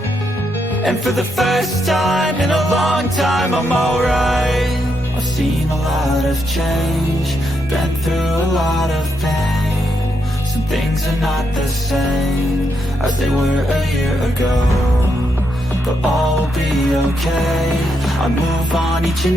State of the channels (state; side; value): normal; both; correlation 0.80